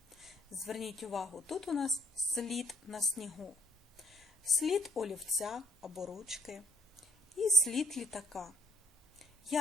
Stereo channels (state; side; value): normal; both; correlation 0.59